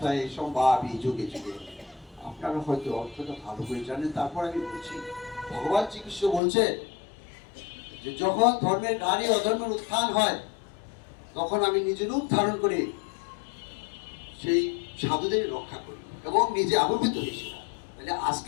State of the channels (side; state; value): right; drops out; at 6.4 s